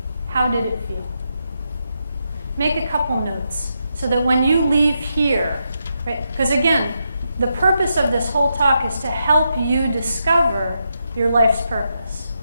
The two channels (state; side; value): inverted; both; correlation -0.83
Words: How did it feel? Make a couple notes so that when you leave here, right? Because again, the purpose of this whole talk is to help you discover your life's purpose.